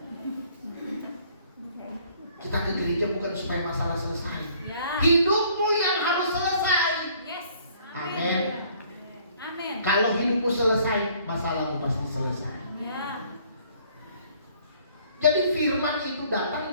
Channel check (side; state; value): both; inverted; correlation -0.59